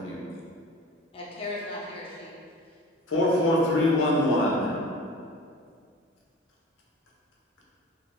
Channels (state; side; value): normal; both; correlation 0.40